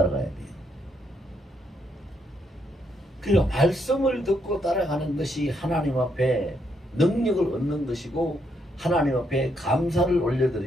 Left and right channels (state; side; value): normal; both; correlation 0.76